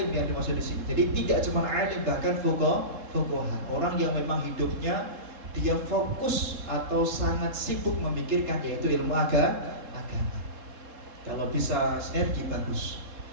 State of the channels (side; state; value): left; late; 3.7 ms